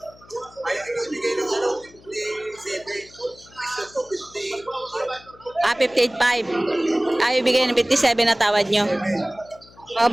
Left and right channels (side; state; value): left; noise; hum, 25 dB below the sound